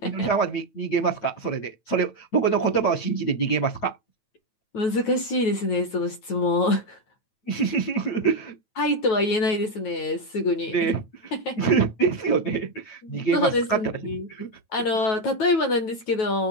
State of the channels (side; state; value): right; late; 9.1 ms